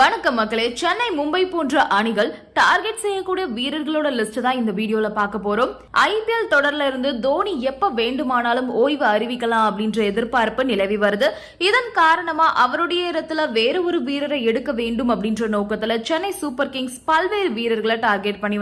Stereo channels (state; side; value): identical; both; correlation 1.00